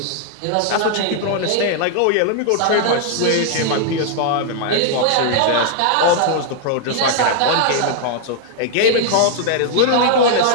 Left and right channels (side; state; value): both; different; correlation -0.01